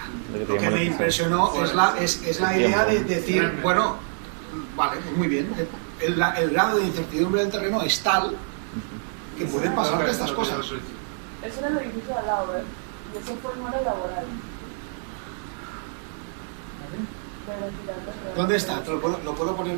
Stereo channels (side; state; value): left; silent; 61 dB below the other